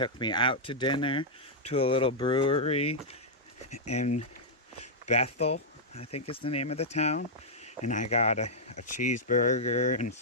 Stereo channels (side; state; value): both; normal; correlation -0.08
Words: me out to dinner to a little brewery in Bethel, I think is the name of the town, and I got a cheeseburger and